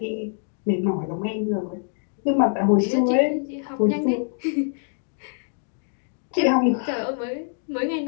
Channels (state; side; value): silent; right; digital silence